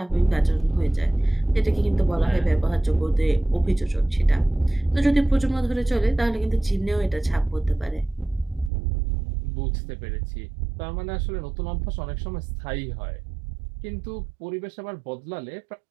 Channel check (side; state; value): left; drops out; at 8.7 s